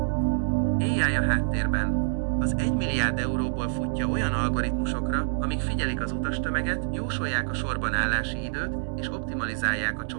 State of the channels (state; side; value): silent; left; digital silence